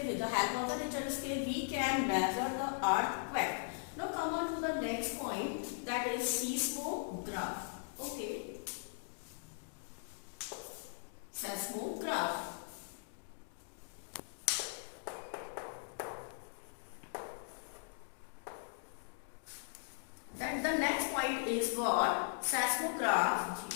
With the help of the Richter's scale, we can measure the earthquake. Now come on to the next point, that is seismograph. Okay, seismograph. Then the next point is what? Seismograph.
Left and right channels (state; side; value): silent; right; digital silence